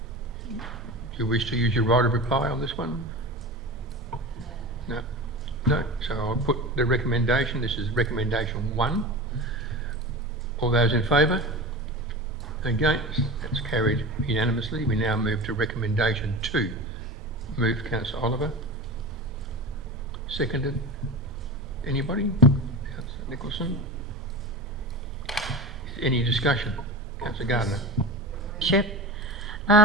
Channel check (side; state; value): both; normal; correlation 0.30